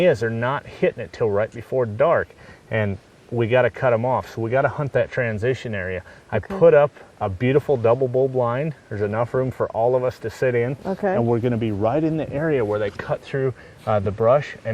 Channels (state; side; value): identical; both; correlation 1.00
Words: is, they're not hitting it till right before dark, and we got to cut them off, so we got to hunt that transition area. I put up a beautiful double bull blind. There's enough room for all of us to sit in, and we're going to be right in the area where they cut through the brush,